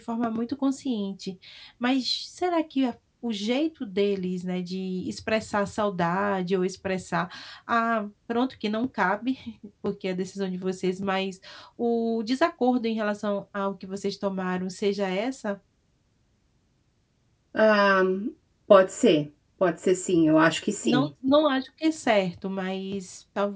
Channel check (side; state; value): both; identical; correlation 1.00